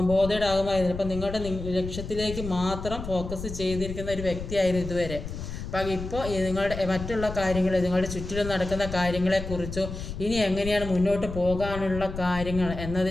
ബോധേഡാകുമായിരുന്നു. അപ്പം നിങ്ങളുടെ ലക്ഷ്യത്തിലേക്ക് മാത്രം ഫോക്കസ് ചെയ്തിരിക്കുന്ന ഒരു വ്യക്തിയായിരുന്നു ഇതുവരെ. അപ്പം ഇപ്പോൾ നിങ്ങളുടെ മറ്റുള്ള കാര്യങ്ങൾ, നിങ്ങളുടെ ചുറ്റിലും നടക്കുന്ന കാര്യങ്ങളെക്കുറിച്ചോ ഇനി എങ്ങനെയാണ് മുന്നോട്ട് പോകാനുള്ള കാര്യങ്ങൾ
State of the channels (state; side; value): noise; left; rumble, 8 dB below the sound